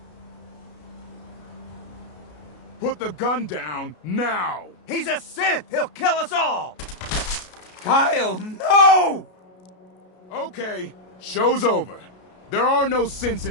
Put the gun down, now! He's a synth! He'll kill us all! Kyle, no! Okay, show's over. There are no synths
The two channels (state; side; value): late; right; 33 ms